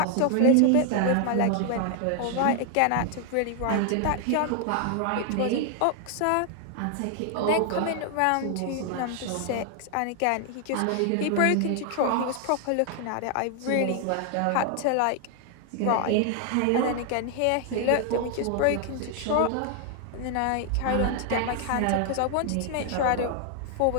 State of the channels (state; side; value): different; both; correlation 0.00